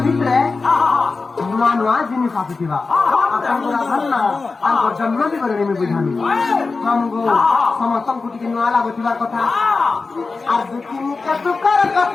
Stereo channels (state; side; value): quieter; right; 4.1 dB